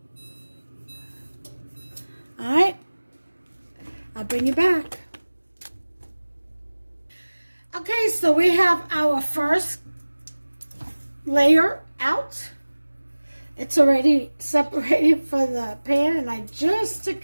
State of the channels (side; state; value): both; inverted; correlation -1.00